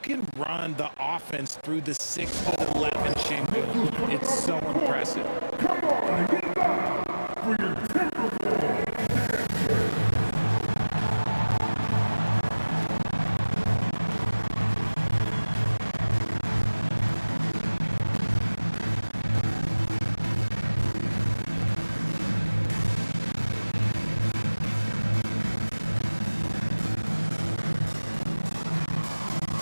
run the offense through the 6'11" Şengün. It's so impressive. Come on, get back for your Timberwolves.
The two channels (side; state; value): both; inverted; correlation -1.00